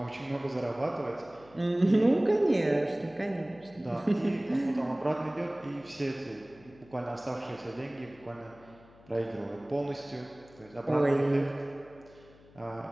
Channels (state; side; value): noise; left; hum, 25 dB below the sound